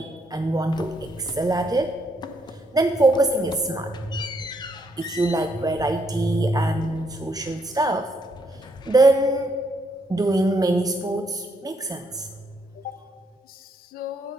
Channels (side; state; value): both; normal; correlation 0.74